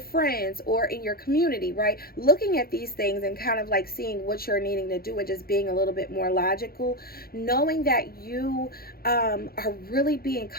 friends or in your community, right? Looking at these things and kind of like seeing what you're needing to do and just being a little bit more logical, knowing that you are really being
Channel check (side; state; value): right; late; 0.44 ms